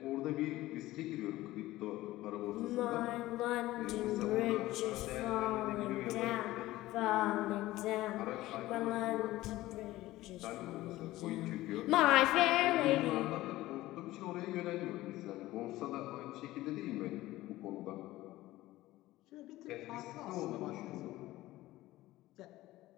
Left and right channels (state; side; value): quieter; right; 16.9 dB